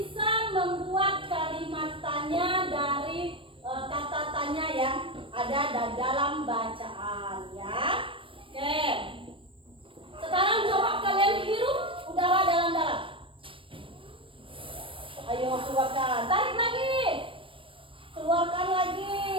membuat kalimat tanya dari kata tanya yang ada dalam bacaan ya. Oke. Sekarang coba kalian hirup udara dalam-dalam. Ayo keluarkan, tarik lagi. Keluarkan lagi,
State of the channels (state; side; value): late; left; 0.25 ms